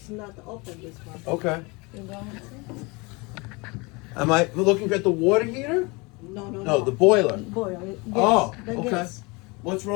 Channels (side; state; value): right; quieter; 26.9 dB